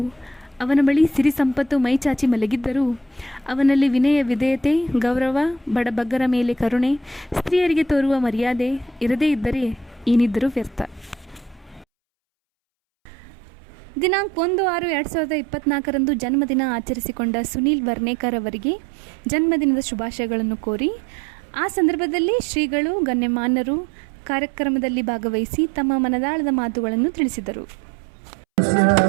ಅವನ ಬಳಿ ಸಿರಿ ಸಂಪತ್ತು ಮೈಚಾಚಿ ಮಲಗಿದ್ದರೂ, ಅವನಲ್ಲಿ ವಿನಯ, ವಿಧೇಯತೆ, ಗೌರವ, ಬಡಬಗ್ಗರ ಮೇಲೆ ಕರುಣೆ, ಸ್ತ್ರೀಯರಿಗೆ ತೋರುವ ಮರ್ಯಾದೆ ಇರದೇ ಇದ್ದರೆ ಏನಿದ್ದರೂ ವ್ಯರ್ಥ. ದಿನಾಂಕ 1/6/2024 ಜನ್ಮದಿನ ಆಚರಿಸಿಕೊಂಡ ಸುನೀಲ್ ವರ್ನೇಕರ್ ಅವರಿಗೆ ಜನ್ಮದಿನದ ಶುಭಾಶಯಗಳನ್ನು ಕೋರಿ, ಆ ಸಂದರ್ಭದಲ್ಲಿ ಶ್ರೀಗಳು, ಗಣ್ಯಮಾನ್ಯರು ಕಾರ್ಯಕ್ರಮದಲ್ಲಿ ಭಾಗವಹಿಸಿ ತಮ್ಮ ಮನದಾಳದ ಮಾತುಗಳನ್ನು ತಿಳಿಸಿದರು.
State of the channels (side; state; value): left; drops out; at 11.9 s